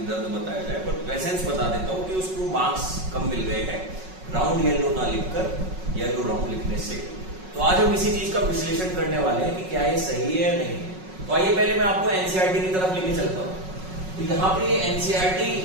दर्द बताया जाए, पर एसेंस बता देता हूं कि उसको मार्क्स कम मिल गए हैं राउंड येलो ना लिखकर येलो राउंड लिखने से। तो आज हम इसी चीज का विश्लेषण करने वाले हैं कि क्या ये सही है या नहीं। तो आइए पहले मैं आपको एनसीईआरटी की तरफ लेके चलता हूं। तो यहाँ पे एनसीईआरटी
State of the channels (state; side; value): late; left; 5.4 ms